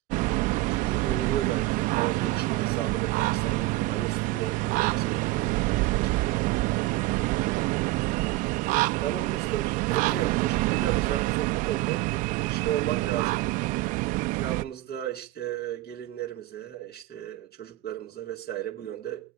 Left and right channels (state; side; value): quieter; left; 18.4 dB